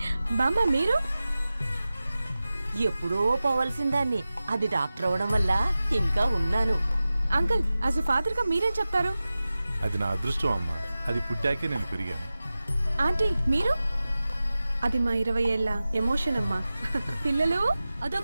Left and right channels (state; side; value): inverted; both; correlation -0.95